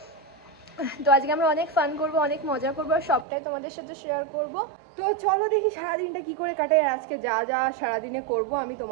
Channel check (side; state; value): left; drops out; at 3.2 s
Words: তো আজকে আমরা অনেক ফান করবো, অনেক মজা করবো, আর সবটাই তোমাদের সাথে শেয়ার করবো। তো চলো দেখি সারাদিনটা কি করে কাটাই, আর আজকে যা যা সারাদিনে করবো আমি